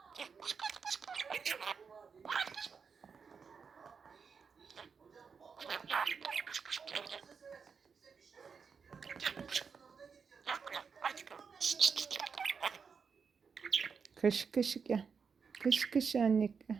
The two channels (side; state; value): left; quieter; 5.8 dB